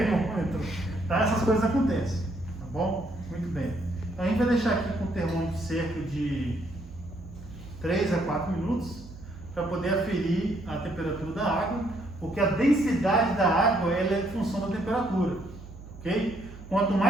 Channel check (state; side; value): noise; right; hum, 16 dB below the sound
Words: tá? Essas coisas acontecem, tá bom? Muito bem. Então, a gente vai deixar aqui com o termômetro cerca de 3 a 4 minutos para poder aferir a temperatura da água, porque a densidade da água ela é em função da temperatura, ok? Quanto